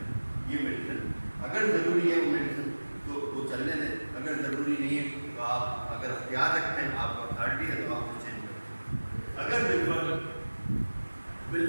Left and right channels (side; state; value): both; inverted; correlation -1.00